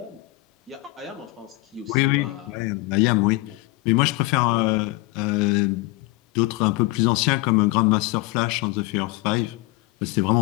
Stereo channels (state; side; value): quieter; right; 21.4 dB